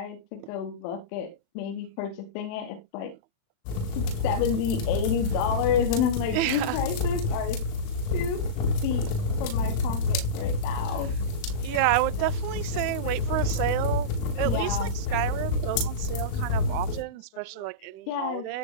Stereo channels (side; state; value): right; late; 36 ms